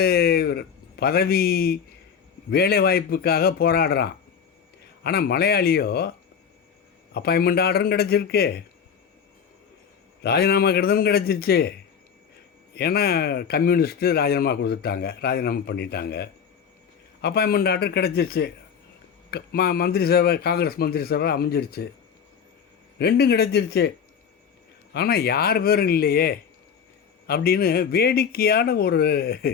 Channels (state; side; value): quieter; right; 7.3 dB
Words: பதவி வேலை வாய்ப்புக்காக போராடுறான். ஆனால் மலையாளியோ அப்பாயின்மெண்ட் ஆர்டரும் கிடச்சிருக்கு, ராஜினாமா கடிதமும் கிடச்சிருச்சு. ஏன்னா கம்யூனிஸ்ட்டு ராஜினாமா கொடுத்துட்டாங்க, ராஜினாமா பண்ணிட்டாங்க. அப்பாயின்மெண்ட் ஆர்டர் கிடச்சிருச்சு, மந்திரி சபை, காங்கிரஸ் மந்திரி சபை அமைஞ்சிருச்சு, 2ம் கிடச்சிருச்சு. ஆனால் யார் பேரும் இல்லையே அப்படின்னு வேடிக்கையான ஒரு